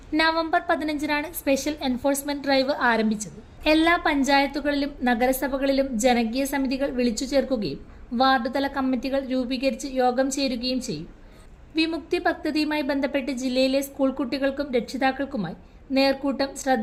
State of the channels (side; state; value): both; identical; correlation 1.00